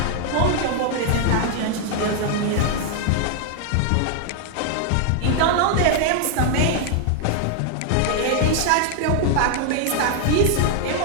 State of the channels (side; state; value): both; different; correlation 0.00